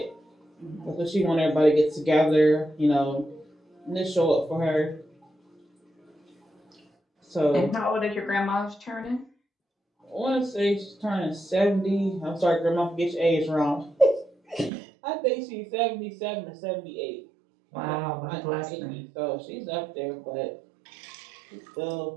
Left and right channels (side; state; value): left; drops out; at 14.7 s